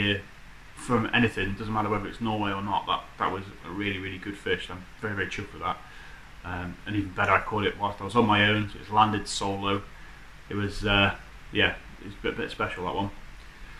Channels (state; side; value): identical; both; correlation 1.00